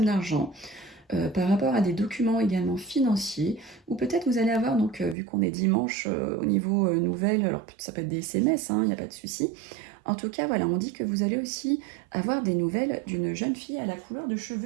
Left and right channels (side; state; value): left; drops out; at 5.2 s